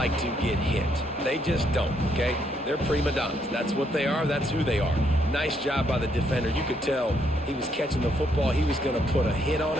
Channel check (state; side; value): normal; both; correlation 0.73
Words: to get hit. They just don't, okay? They're prima donnas. That's what they are. That's who they are. Nice job by the defender. You could tell he was catching the football. He was going to put a hit on